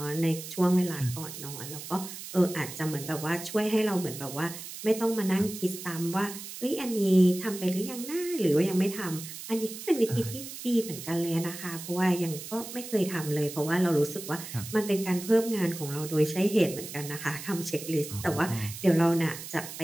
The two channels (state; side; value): noise; right; hiss, 11 dB below the sound